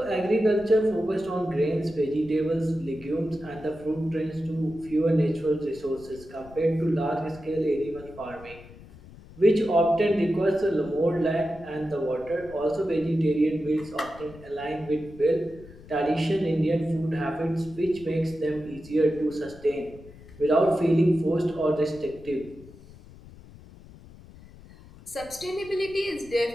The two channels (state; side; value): noise; left; rumble, 20 dB below the sound